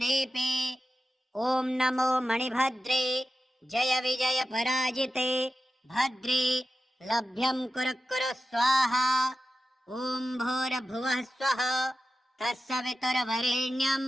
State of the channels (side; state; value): both; normal; correlation 0.92